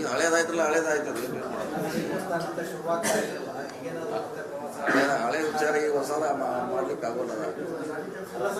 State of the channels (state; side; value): identical; both; correlation 1.00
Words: ಹಳೇದಾಯ್ತಲ್ಲ, ಹಳೇದಾಯ್ತದ. ಶುರುವಾಗ್ತಾ ಇರಲಿಲ್ಲ. ಈಗೇನಾದ್ರು ಹಳೆ ವಿಚಾರ ಈಗ ಹೊಸ ಮಾಡ್ಲಿಕ್ಕೆ ಆಗೋಲ್ಲ. ಅಲ್ಲ